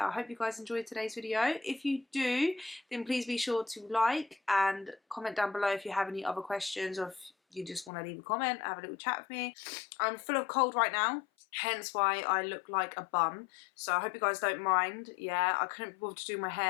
I hope you guys enjoyed today's video. If you do, then please be sure to like and comment down below if you have any other questions or if you just want to leave a comment, have a little chat with me. I'm full of cold right now, hence why I look like a bum, so I hope you guys don't mind. Yeah, I couldn't be bothered to do my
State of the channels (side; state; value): right; drops out; at 7.9 s